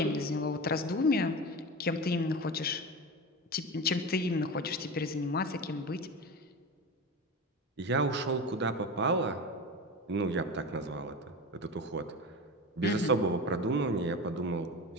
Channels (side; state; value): both; normal; correlation 0.26